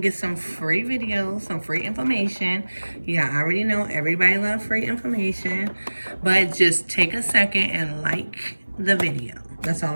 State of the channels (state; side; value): inverted; both; correlation -1.00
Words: some free videos, some free information. Yeah, I already know everybody loves free information, but just take a second and like the video. That's